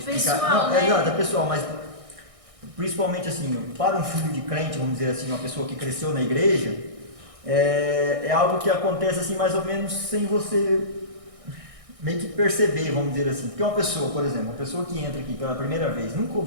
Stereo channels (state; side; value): late; left; 1.6 ms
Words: Pessoal, Não, né? exato, é pessoal, mas principalmente assim, para um filho de crente, vamos dizer assim, uma pessoa que cresceu na igreja, é algo que acontece assim mais ou menos sem você meio que perceber, vamos dizer assim. Porque uma pessoa, por exemplo, uma pessoa que entra aqui pela primeira vez, nunca